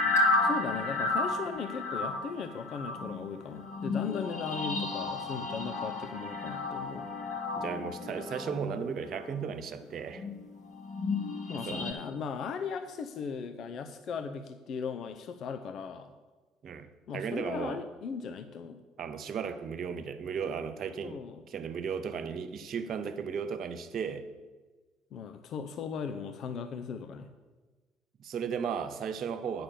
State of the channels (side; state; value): both; normal; correlation 0.42